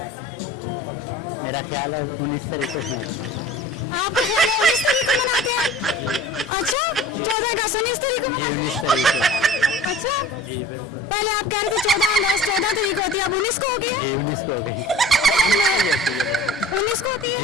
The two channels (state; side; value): normal; both; correlation 0.43